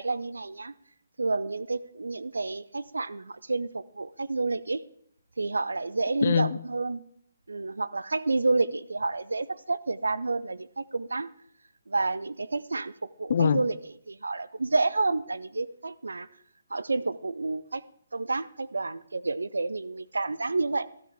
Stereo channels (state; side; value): inverted; both; correlation -0.92